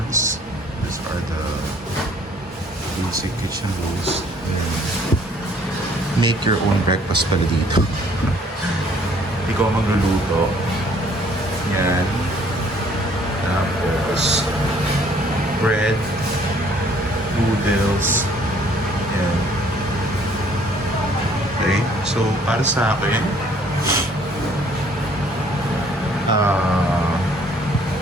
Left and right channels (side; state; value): both; normal; correlation 0.59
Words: These are the basic kitchen rules. Make your own breakfast pala dito. Ikaw magluluto. Yan. Tapos bread, noodles. Yan. Okay, so para sa akin,